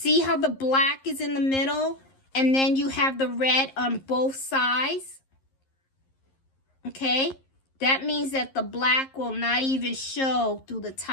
how the black is in the middle and then you have the red on both sides? Okay? That means that the black will not even show through the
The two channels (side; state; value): right; late; 11 ms